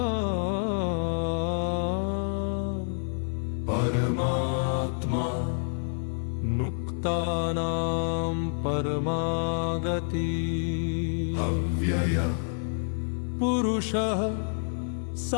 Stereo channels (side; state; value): right; silent; 59 dB below the other